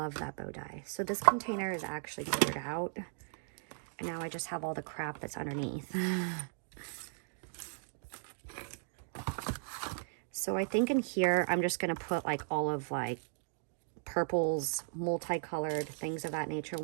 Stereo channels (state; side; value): silent; left; digital silence